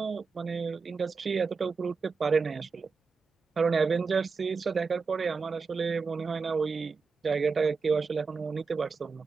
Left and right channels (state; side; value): quieter; left; 4.8 dB